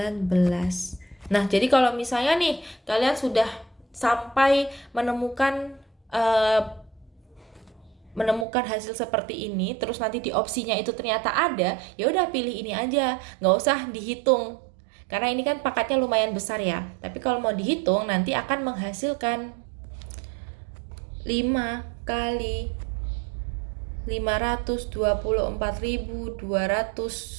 Nah, jadi kalau misalnya nih kalian sudah sampai menemukan hasil seperti ini, terus nanti di opsinya itu ternyata ada, ya udah pilih ini aja, nggak usah dihitung. Karena ini kan pangkatnya lumayan besar ya. Tapi kalau mau dihitung nanti akan menghasilkan 5 kali 288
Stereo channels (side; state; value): left; drops out; at 8.5 s